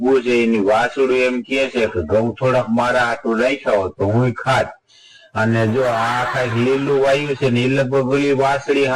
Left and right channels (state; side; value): identical; both; correlation 1.00